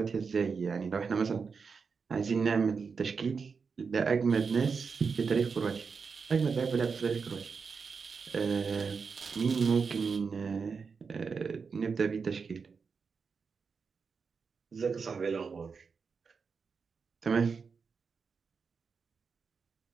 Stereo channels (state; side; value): quieter; left; 5.4 dB